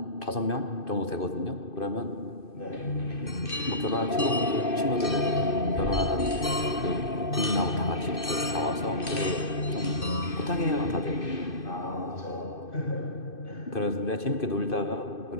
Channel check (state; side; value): late; right; 2.5 ms